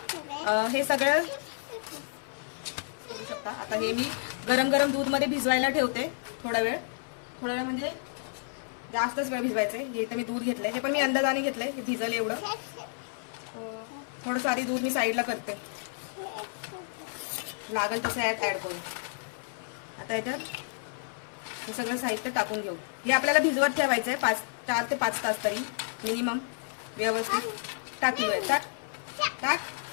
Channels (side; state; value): right; silent; 57 dB below the other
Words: हे सगळं करू शकता। आता हे मी गरम गरम दूध मध्ये भिजवायला ठेवते थोडा वेळ म्हणजे जास्तच वेळ भिजवायचं आहे। हे इथं मी दूध घेतलंय, हे पण मी अंदाजाने घेतलंय, हे भिजल एवढं। थोडं सारी दूध मी साईडला करते, लागल तसे ऍड करू। आता याच्यात हे सगळं साहित्य टाकून घेऊ। हे आपल्याला भिजवत ठेवायचं आहे 4 ते 5 तास तरी मिनिमम। व्यवस्थित टाकलोय, टाक।